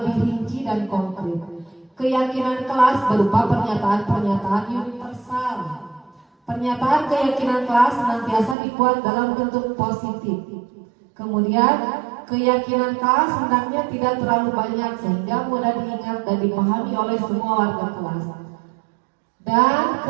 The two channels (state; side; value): drops out; left; at 8.6 s